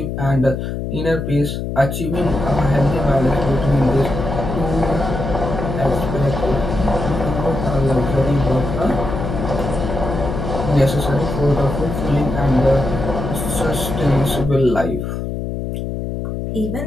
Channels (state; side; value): noise; left; hum, 4 dB below the sound